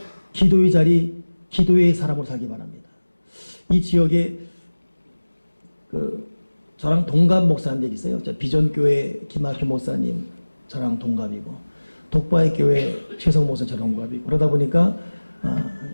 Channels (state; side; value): inverted; both; correlation -1.00